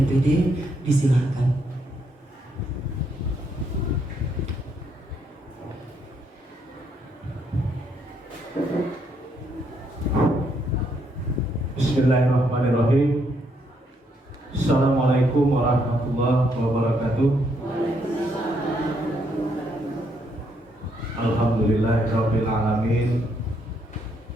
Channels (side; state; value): both; normal; correlation 0.74